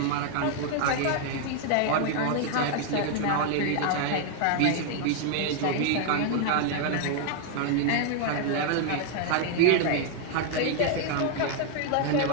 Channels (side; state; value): both; different; correlation 0.00